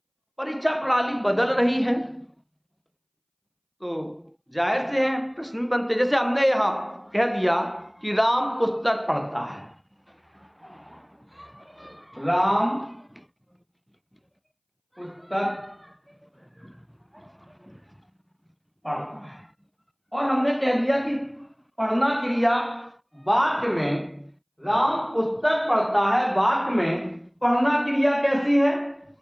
परीक्षा प्रणाली बदल रही है, तो जाहिर से है प्रश्न बनते। जैसे हमने यहां कह दिया कि राम पुस्तक पढ़ता है, राम पुस्तक पढ़ता है, और हमने कह दिया कि पढ़ना क्रिया वाक्य में, राम पुस्तक पढ़ता है वाक्य में पढ़ना क्रिया कैसी है?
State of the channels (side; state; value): both; identical; correlation 1.00